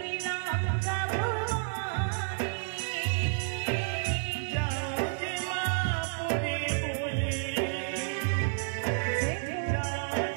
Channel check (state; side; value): silent; left; digital silence